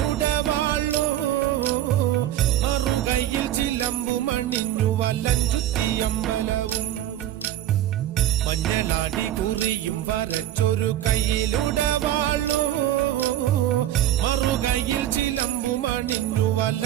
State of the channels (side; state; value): left; quieter; 12.4 dB